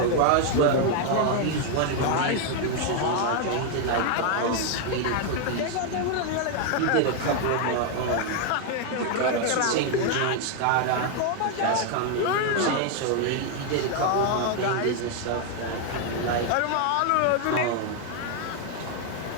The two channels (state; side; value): different; both; correlation 0.00